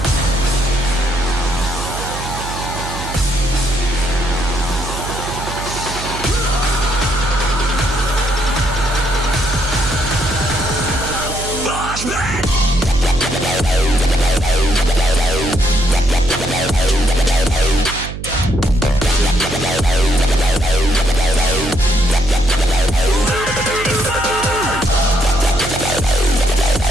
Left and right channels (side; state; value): right; noise; hum, 9 dB below the sound